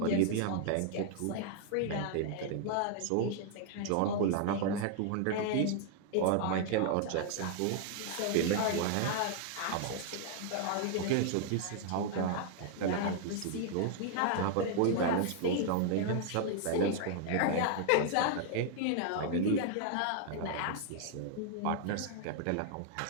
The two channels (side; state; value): both; different; correlation 0.00